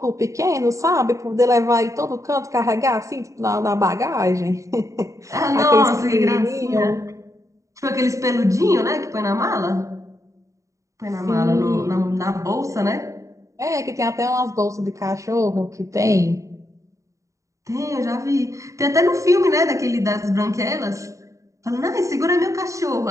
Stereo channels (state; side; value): late; left; 0.15 ms